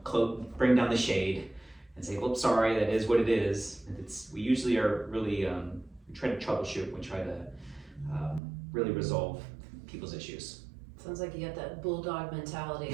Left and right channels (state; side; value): drops out; left; at 8.4 s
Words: bring down the shade and say, well, sorry, that is what it is. We usually are really, we try to troubleshoot, we try to really resolve people's issues. Sounds like you got that bulldog mentality,